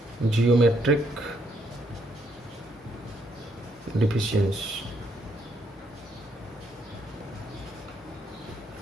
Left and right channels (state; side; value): normal; both; correlation 0.73